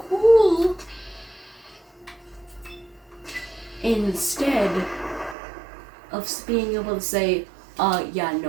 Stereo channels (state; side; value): drops out; left; at 5.4 s